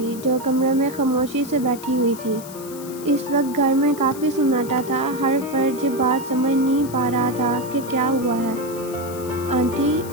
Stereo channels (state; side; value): noise; left; hiss, 16 dB below the sound